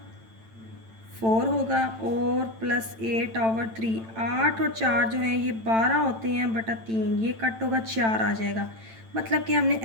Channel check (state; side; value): late; left; 9.0 ms